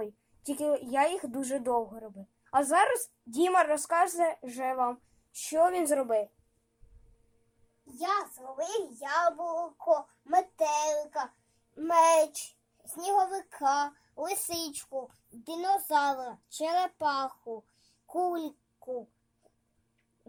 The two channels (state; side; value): identical; both; correlation 1.00